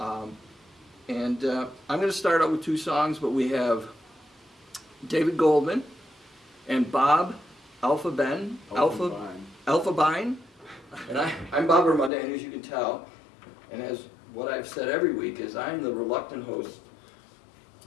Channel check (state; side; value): drops out; right; at 12.1 s